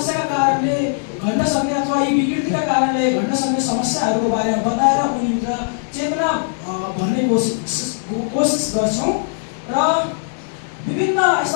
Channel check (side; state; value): right; silent; digital silence